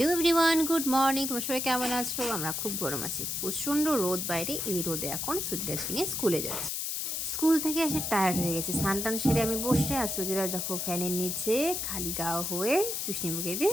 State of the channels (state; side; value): noise; left; hiss, 2 dB below the sound